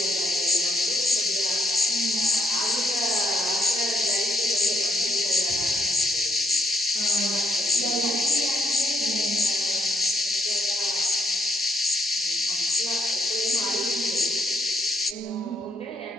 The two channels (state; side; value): normal; both; correlation 0.72